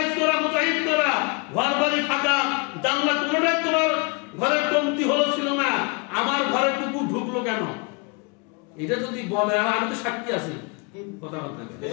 করা, মোজাইক করা, ঘর বাড়ি ফাঁকা, জানলা কোনটাই তোমার ঘরের কমতি হলো ছিল না, আমার ঘরে কুকুর ঢুকলো কেন? এটা যদি বলে, আর আমি তো সাক্ষী আছি, কথা বলতে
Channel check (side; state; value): right; quieter; 31.7 dB